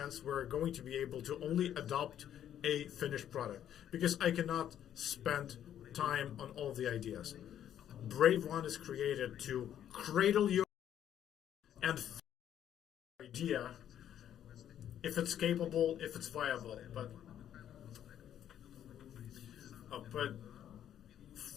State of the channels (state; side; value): quieter; right; 10.4 dB